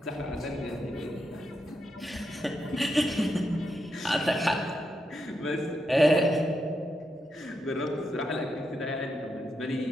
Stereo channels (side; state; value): both; normal; correlation 0.83